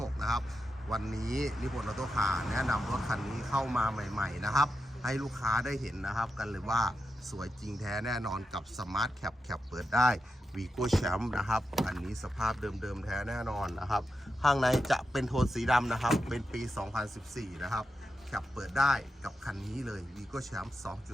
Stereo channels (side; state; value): both; normal; correlation 0.88